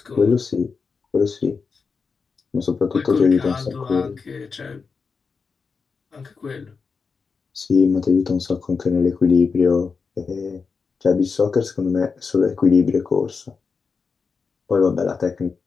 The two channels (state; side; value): quieter; right; 5.1 dB